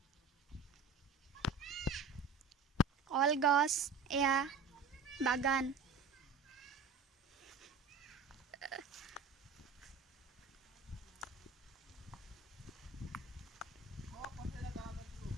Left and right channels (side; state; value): left; quieter; 4.5 dB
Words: কলগছ এয়া বাগান।